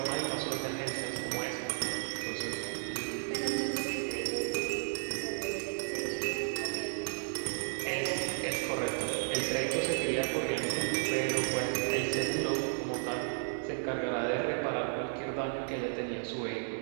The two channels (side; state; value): left; silent; digital silence